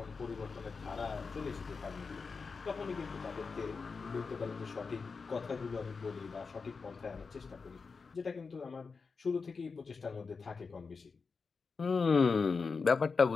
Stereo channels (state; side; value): quieter; right; 4.8 dB